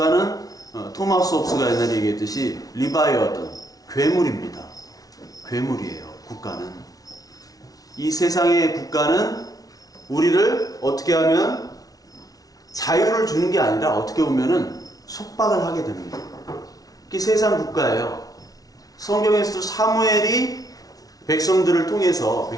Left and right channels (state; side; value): late; right; 0.18 ms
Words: 토마스 홉스가 옛날에 얘기했듯이 리바이어든 괴물입니다. 괴물이에요. 국가는. 이 세상의 국가는 우리를 어떻게 하면 자유를 주는 게 아니라 어떻게 보면은 속박을 하게 됩니다. 그게 세상 국가예요. 성경에서도 사무엘이 백성들을 통해서